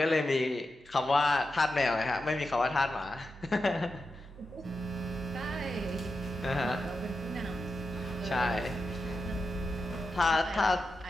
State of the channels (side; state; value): both; normal; correlation 0.89